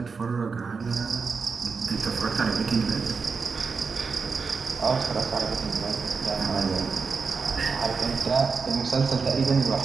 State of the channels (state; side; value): quieter; left; 5.0 dB